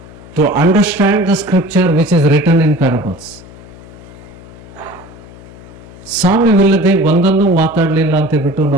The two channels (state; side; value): noise; left; hum, 19 dB below the sound